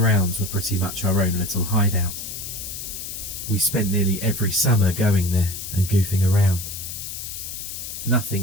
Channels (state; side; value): noise; left; hiss, 8 dB below the sound